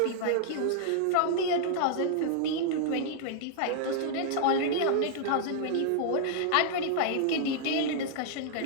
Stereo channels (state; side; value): different; both; correlation -0.01